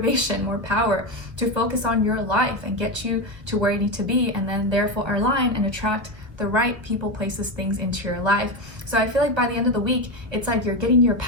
more power to focus on your life and get you to where you need to be, and then therefore align and attract the right people, places, things into your life. So I feel like by the end of the week, it's like you're getting your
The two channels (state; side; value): late; left; 1.1 ms